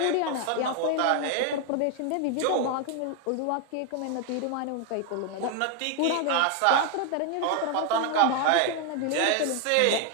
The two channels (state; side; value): different; both; correlation 0.00